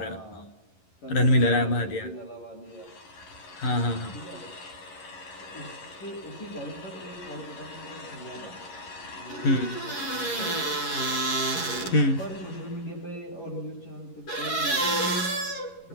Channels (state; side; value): late; right; 11 ms